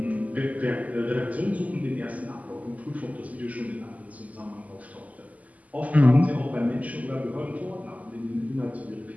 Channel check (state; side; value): late; left; 0.075 ms